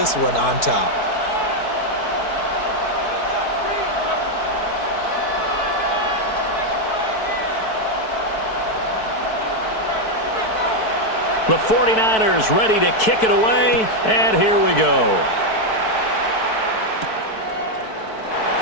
one on top. The 49ers ready to kick it away, and here we go.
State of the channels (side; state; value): right; late; 4.6 ms